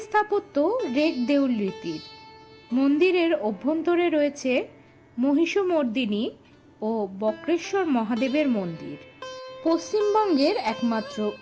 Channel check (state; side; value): identical; both; correlation 1.00